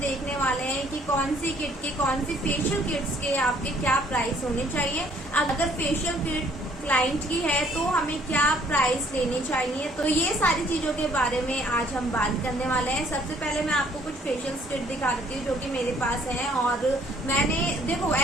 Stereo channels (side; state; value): both; normal; correlation 0.61